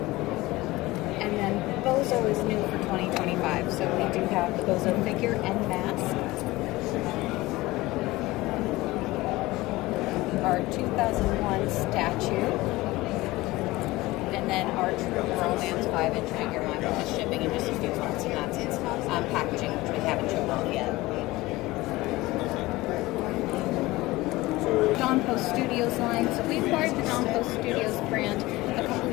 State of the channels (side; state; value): right; quieter; 19.5 dB